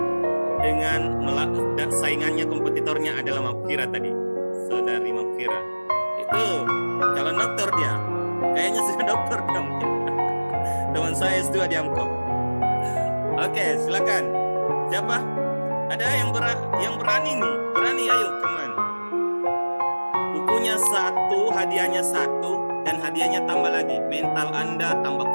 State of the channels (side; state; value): both; inverted; correlation -1.00